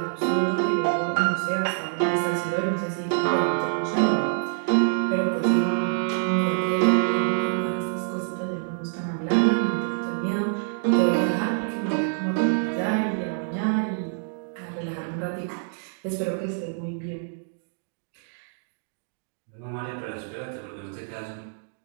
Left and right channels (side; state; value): left; silent; digital silence